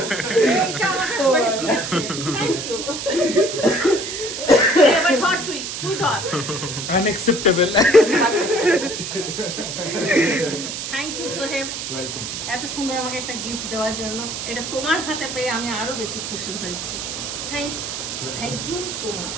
এইটা আমাদের সবাই দিয়েছে। Thank you. এবার ধর তুই ধর। Unacceptable. Thank you Soheb, welcome. এত সুন্দর আমাকে একটা গিফট দেওয়ার জন্য। এটা তোমার হাতে পেয়ে আমি আরো বেশি খুশি হয়েছি। Thank you so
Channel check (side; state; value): right; noise; hiss, 5 dB below the sound